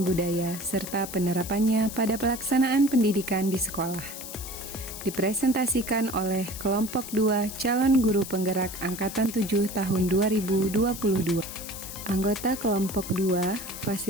budaya serta penerapannya pada pelaksanaan pendidikan di sekolah. Dipresentasikan oleh kelompok 2 calon guru penggerak angkatan 7 tahun 2022. Anggota kelompok 2,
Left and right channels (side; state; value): left; noise; hiss, 10 dB below the sound